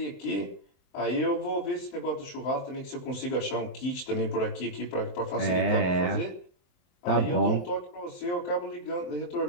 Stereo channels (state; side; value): late; right; 23 ms